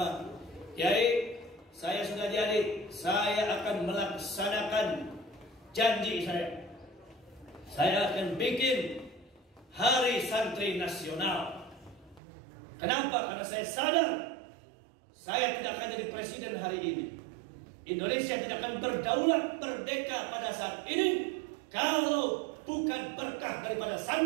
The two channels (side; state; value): left; drops out; at 12.2 s